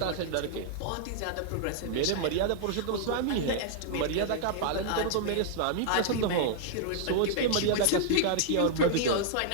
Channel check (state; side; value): different; both; correlation -0.01